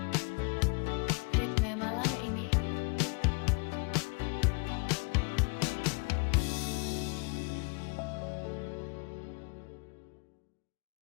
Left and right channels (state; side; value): quieter; right; 32.4 dB